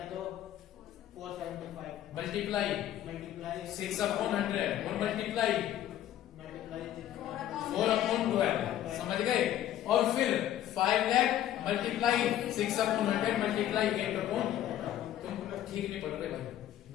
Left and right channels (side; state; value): right; quieter; 12.1 dB